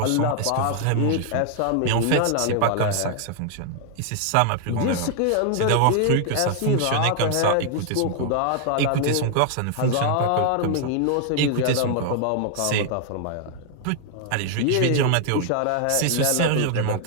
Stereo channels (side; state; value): both; different; correlation 0.00